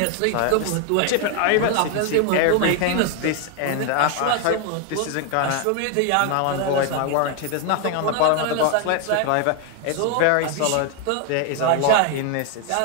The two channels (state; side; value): different; both; correlation 0.01